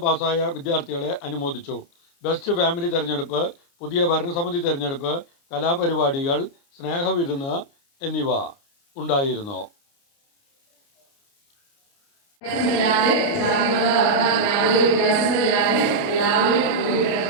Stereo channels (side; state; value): right; late; 29 ms